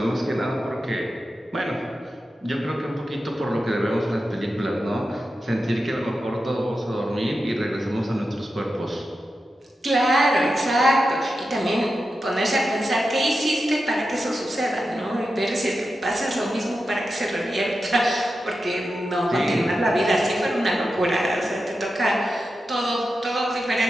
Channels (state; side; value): normal; both; correlation 0.90